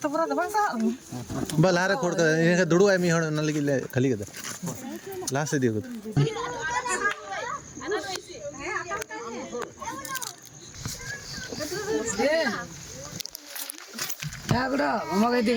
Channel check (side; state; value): both; identical; correlation 1.00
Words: पूरा दबा सा बल हारे खोड़ कर इनका दुड़ू है मी हण न लगी खाली कर लास्ट से दियो क्या गुड़ा मम्मा के